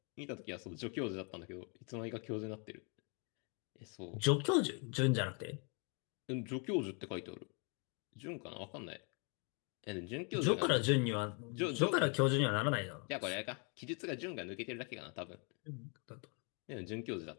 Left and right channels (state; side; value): quieter; right; 36.4 dB